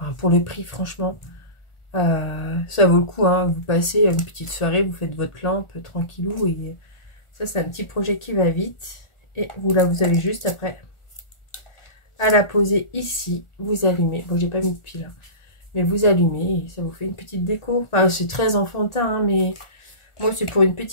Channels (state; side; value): late; right; 1.4 ms